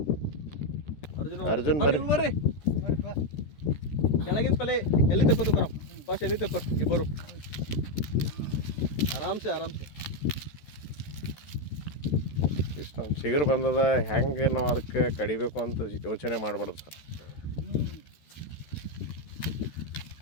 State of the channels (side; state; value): right; late; 13 ms